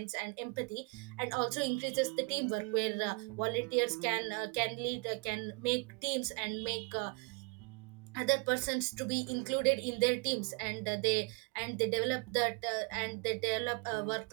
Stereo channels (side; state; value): left; quieter; 34.5 dB